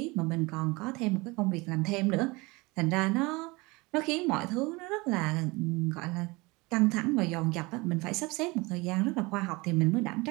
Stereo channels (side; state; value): left; quieter; 24.4 dB